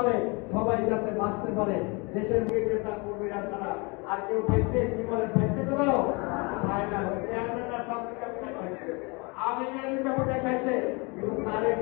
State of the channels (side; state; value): right; quieter; 29.3 dB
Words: সবাই যাতে বাঁচতে পারে। দেশের নেতা কর্মীরা ছাড়া আর কেউ ব্যক্তি জীবনের ব্যক্তি করেও হয় না।